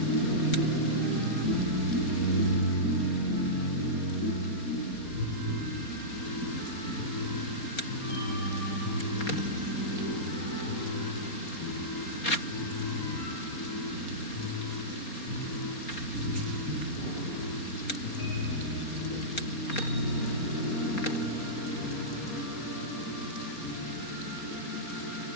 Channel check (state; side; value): late; right; 4.3 ms